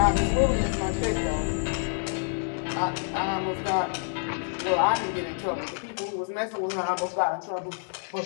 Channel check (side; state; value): right; silent; 60 dB below the other